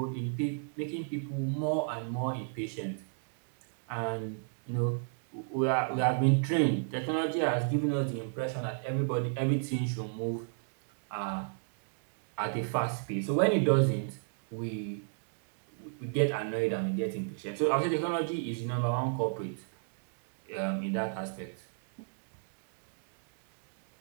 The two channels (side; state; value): left; silent; digital silence